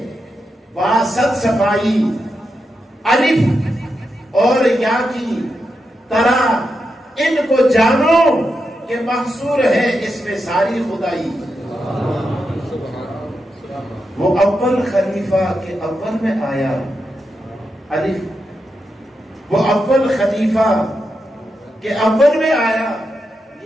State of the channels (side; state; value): both; normal; correlation 0.86